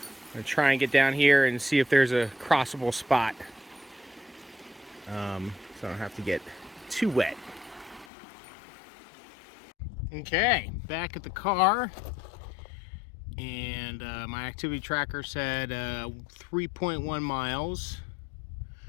gonna try and get down here and see if there's a crossable spot, so I don't have to get too wet. Okay, back at the car, and my activity tracker said 3.1 miles.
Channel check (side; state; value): right; drops out; at 8.1 s